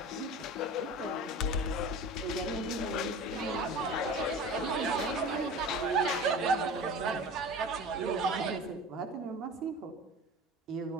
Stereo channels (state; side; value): normal; both; correlation 0.36